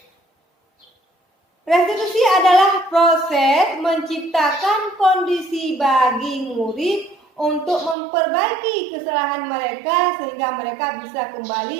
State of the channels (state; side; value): drops out; left; at 8.0 s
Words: Restitusi adalah proses menciptakan kondisi bagi murid untuk memperbaiki kesalahan mereka sehingga mereka bisa